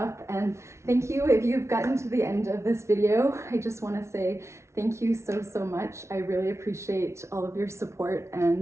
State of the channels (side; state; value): left; late; 0.13 ms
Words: And thank you if you've gotten to the end of this video. I just want to say thank you so much. I really appreciate all of your support,